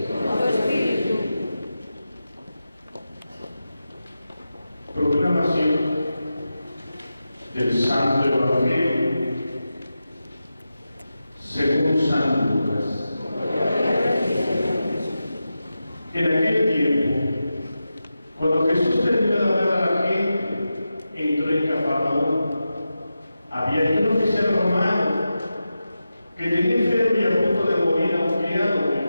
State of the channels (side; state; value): both; inverted; correlation -0.91